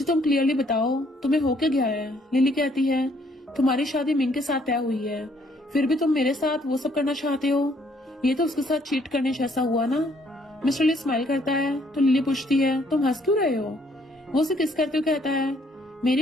तुम क्लियरली बताओ तुम्हें हो क्या गया है? लिली कहती है, तुम्हारी शादी मिंग के साथ तय हुई है, फिर भी तुम मेरे साथ वो सब करना चाहते हो, ये तो उसके साथ चीट करने जैसा हुआ ना? मिस्टर ली स्माइल करता है तो लिली पूछती है, तुम हंस क्यों रहे हो? वो उसे किस करते हुए कहता है, मेरी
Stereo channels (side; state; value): both; normal; correlation 0.66